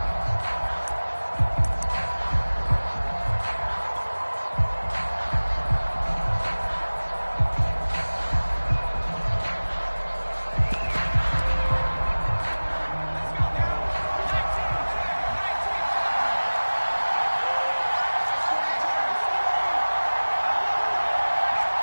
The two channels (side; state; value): both; inverted; correlation -1.00